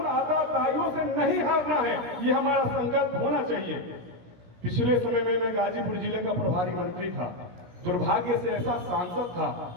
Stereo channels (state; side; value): late; left; 17 ms